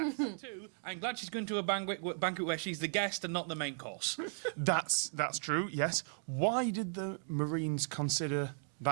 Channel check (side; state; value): left; silent; 54 dB below the other